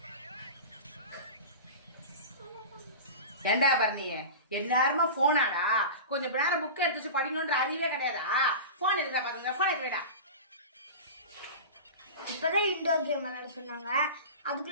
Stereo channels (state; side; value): inverted; both; correlation -0.30